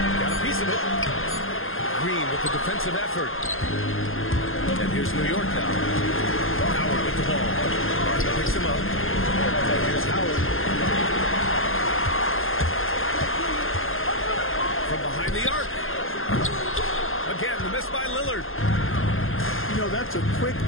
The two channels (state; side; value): late; right; 0.60 ms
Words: Got a piece of it. Green with the defensive effort. And here's New York now. Howard with the ball. Martin picks him up. And here's Howard. From behind the arc. Again, the miss by Lillard. You know, that's a quick